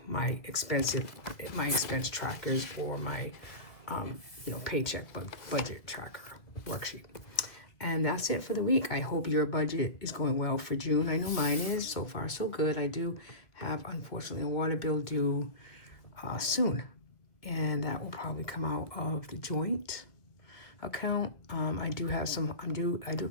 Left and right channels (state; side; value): late; right; 1.7 ms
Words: my expense trackers or my, paycheck budget tracker worksheet. And that's it for the week. I hope your budget is going well for June. I know mine is. So far, so good. I do have, unfortunately, a water bill due soon. And that will probably come out of the joint account. I do